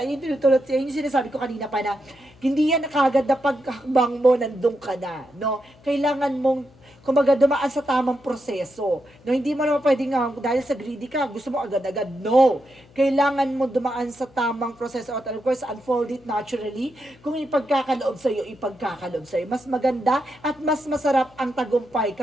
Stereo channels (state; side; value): noise; left; hum, 27 dB below the sound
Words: sinasabi ko kanina pa na, hindi yan kagad na paghakbang mo, nandun ka na. No? Kailangan mong kumbaga dumaan sa tamang proseso. No, hindi mo naman pwedeng dahil sa greedy ka, gusto mo agad-agad. No. Kailangan mo dumaan sa tamang proseso at of course, unfold it naturally. Kung ipagkakaloob sa'yo, ipagkakaloob sa'yo. Mas maganda at mas masarap ang tagumpay